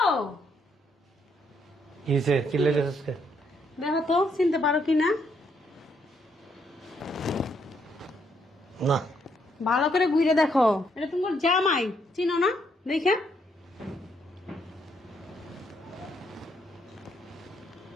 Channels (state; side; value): normal; both; correlation 0.73